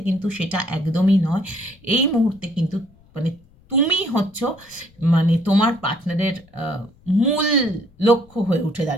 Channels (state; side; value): noise; left; rumble, 29 dB below the sound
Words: কিন্তু সেটা একদমই নয়। এই মুহূর্তে কিন্তু মানে তুমি হচ্ছ মানে তোমার পার্টনারের মূল লক্ষ্য হয়ে উঠে